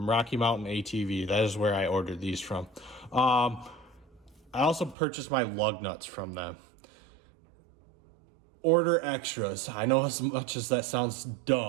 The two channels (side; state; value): left; drops out; at 5.0 s